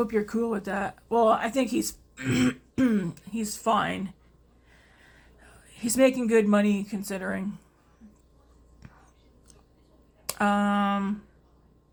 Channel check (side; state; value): both; identical; correlation 1.00